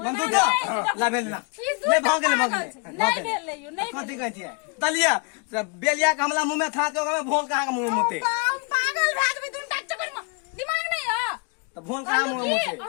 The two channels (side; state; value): right; quieter; 33.1 dB